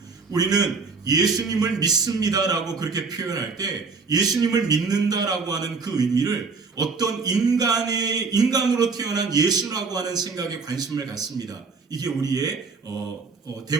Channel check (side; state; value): left; quieter; 4.6 dB